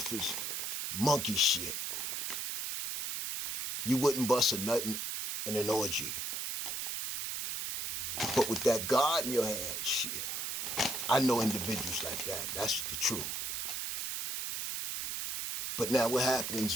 as monkey shit. You wouldn't bust a nut in an orgy. But with that God in your hand, shit, I know individuals like that. That's the truth. But now what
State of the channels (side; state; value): right; noise; hiss, 3 dB below the sound